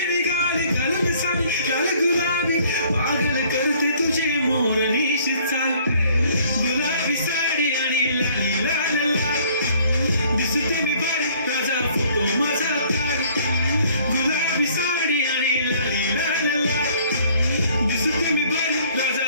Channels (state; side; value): inverted; both; correlation -0.58